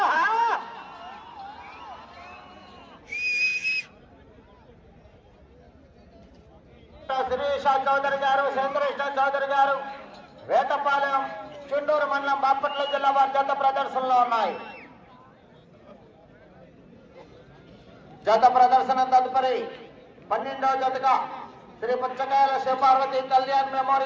శిరీష చౌదరి గారు శంకరేశ్వర చౌదరి గారు వేటపాలెం చుండూరు మండలం బాపట్ల జిల్లా వారి జత ప్రదర్శనలో ఉన్నాయి. జత ప్రదర్శన తదుపరి 12వ జతగా శ్రీ పుచ్చకాయల శివపార్వతి కళ్యాణ్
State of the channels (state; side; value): identical; both; correlation 1.00